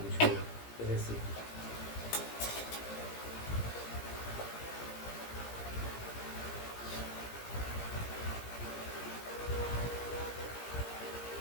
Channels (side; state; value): right; late; 17 ms